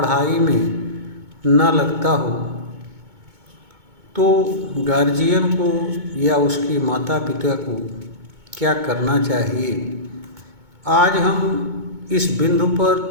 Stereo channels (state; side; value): late; left; 2.2 ms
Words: में न लगता हो तो गार्जियन को या उसके माता पिता को क्या करना चाहिए। आज हम इस बिंदु